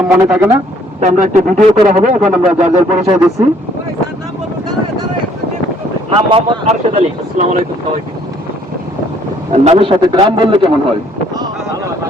মনে থাকে না, তো আমরা একটা ভিডিও করা হবে। এখন আমরা যার যার পরিচয় দিচ্ছি। নাম মোহাম্মদ আরশেদ আলী। আসসালামু আলাইকুম সবাইকে। নামের সাথে গ্রাম বললে কেমন হয়?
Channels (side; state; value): both; normal; correlation 0.63